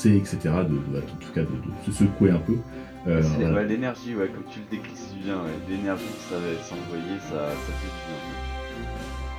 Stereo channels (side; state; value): both; identical; correlation 1.00